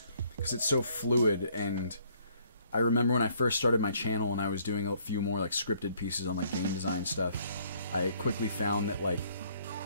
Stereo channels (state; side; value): inverted; both; correlation -0.64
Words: because it's so fluid. And I remember when I first started my channel and I was doing a few more, like, scripted pieces on, like, game design stuff, I quickly found that, like,